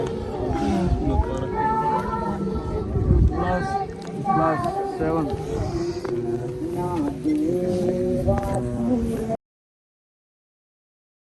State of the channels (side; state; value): both; identical; correlation 1.00